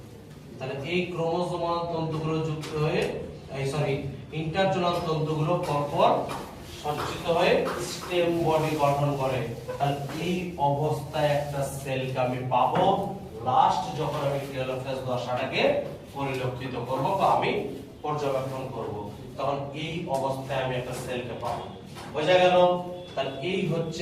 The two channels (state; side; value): identical; both; correlation 1.00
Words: তাহলে এই ক্রোমোসোমাল তন্তুগুলো যুক্ত হয়ে ইন্টারজোনাল তন্তুগুলো পরপর সজ্জিত হয়ে স্টেম বডি গঠন করে। তাহলে এই অবস্থায় একটা সেলকে আমি পাবো লাস্ট যখন আমি টেলোফেজ দশাটাকে পরিলক্ষিত করব বা আমি পর্যবেক্ষণ করব, তখন এই অবস্থায় আমি একটা সেলকে পাবো। বোঝা গেল? তাহলে এই হচ্ছে